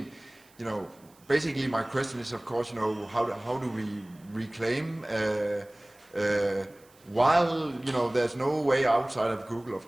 basically my question is, of course, how do we reclaim while there's no way outside of Google? Of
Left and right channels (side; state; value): right; noise; hiss, 29 dB below the sound